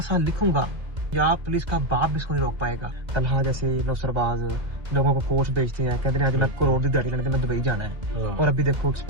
लिखूंगा या पुलिस का बाप भी इसको नहीं रोक पाएगा। तलहा जैसे नौसरबाज लोगों को कोच बेचते हैं, कहते हैं आज मैं करोड़ की दिहाड़ी लेने मैं दुबई जाना है, और अभी देखो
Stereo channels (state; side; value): late; left; 2.1 ms